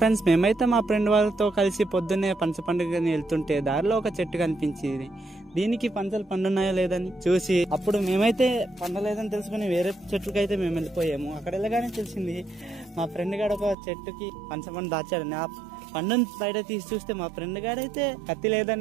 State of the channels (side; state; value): left; drops out; at 13.8 s